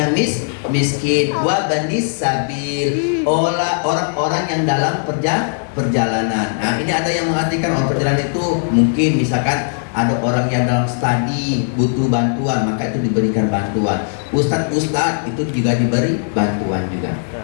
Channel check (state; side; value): silent; right; digital silence